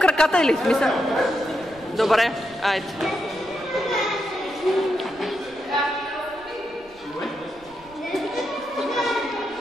или смисъл? Добре, айде.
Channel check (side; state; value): right; noise; rumble, 26 dB below the sound